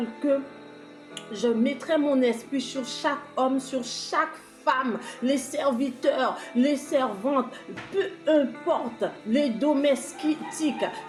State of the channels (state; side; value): identical; both; correlation 1.00